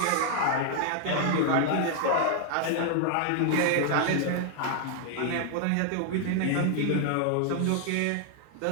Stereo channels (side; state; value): both; different; correlation 0.00